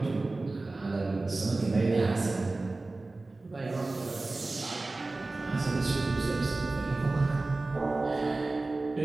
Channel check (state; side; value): quieter; left; 3.2 dB